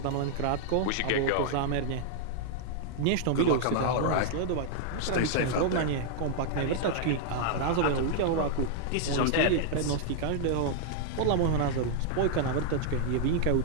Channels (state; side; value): different; both; correlation 0.00